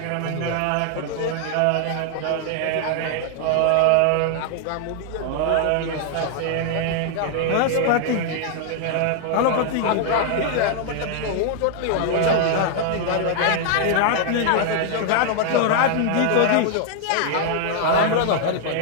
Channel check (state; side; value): different; both; correlation 0.00